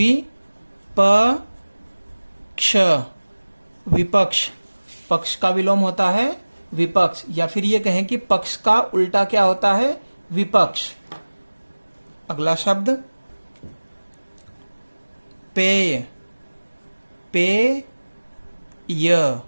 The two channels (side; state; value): both; inverted; correlation -1.00